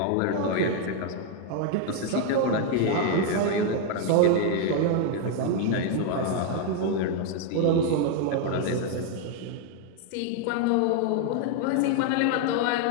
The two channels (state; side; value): different; both; correlation 0.01